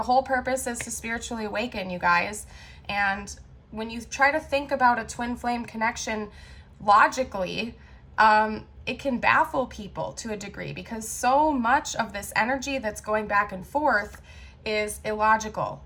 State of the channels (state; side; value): identical; both; correlation 1.00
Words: whole purpose is to spiritually awaken, you guys. And when you try to think about a twin flame connection logically, it can baffle people to a degree, because so much of this energy that's going back and forth is illogical,